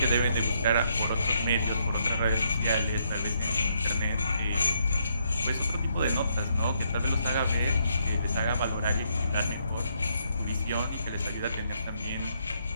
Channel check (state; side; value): inverted; both; correlation -0.74